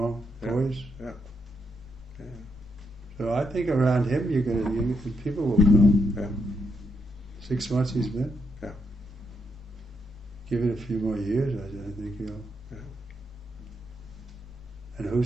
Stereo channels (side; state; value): both; normal; correlation 0.79